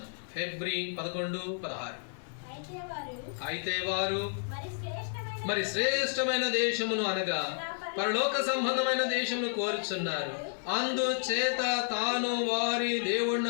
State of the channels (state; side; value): silent; right; digital silence